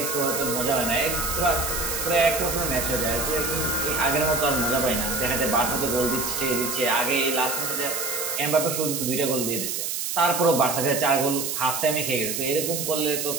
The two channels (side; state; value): right; noise; hiss, 2 dB below the sound